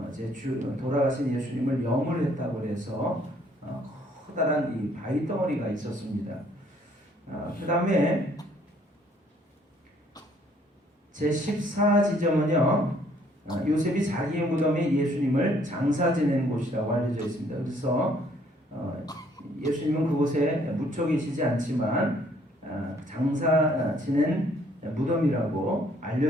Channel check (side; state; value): both; normal; correlation 0.63